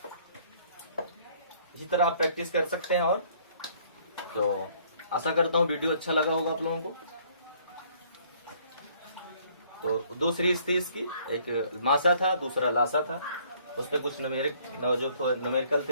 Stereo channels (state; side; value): inverted; both; correlation -0.61